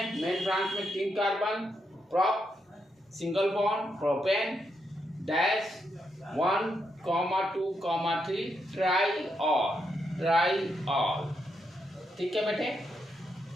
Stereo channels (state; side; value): normal; both; correlation 0.81